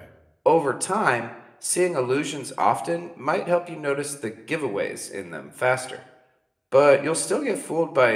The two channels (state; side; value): identical; both; correlation 1.00